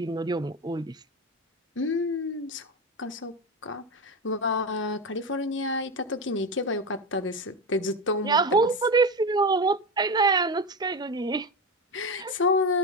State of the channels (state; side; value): normal; both; correlation 0.18